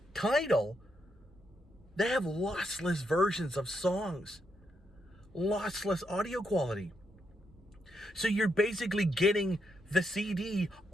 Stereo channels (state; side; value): normal; both; correlation 0.80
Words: Tidal, they have lossless versions of songs. lossless audio quality. So you're basically getting the CD